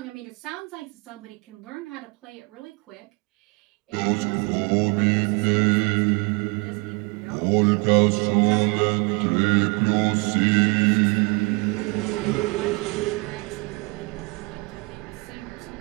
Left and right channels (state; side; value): quieter; left; 28.8 dB